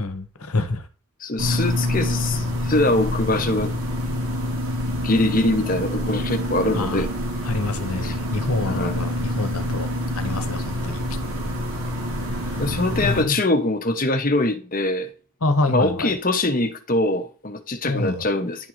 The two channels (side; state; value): both; normal; correlation 0.47